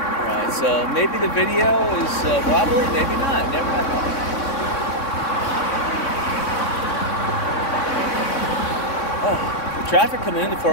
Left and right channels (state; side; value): late; right; 3.6 ms